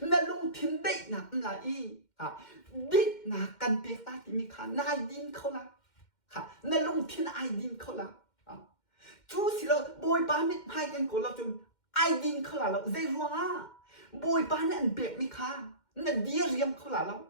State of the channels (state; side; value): late; right; 2.1 ms